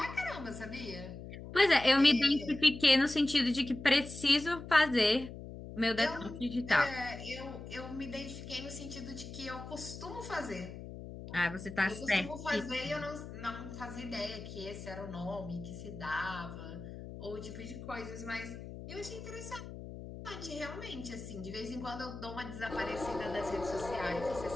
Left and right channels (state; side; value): noise; left; hum, 11 dB below the sound